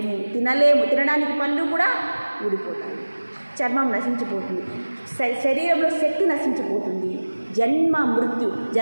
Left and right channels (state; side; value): inverted; both; correlation -1.00